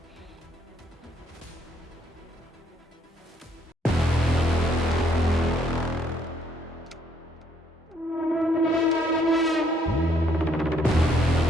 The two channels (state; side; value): normal; both; correlation 0.69